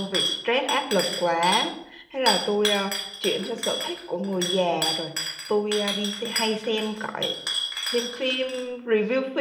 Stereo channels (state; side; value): identical; both; correlation 1.00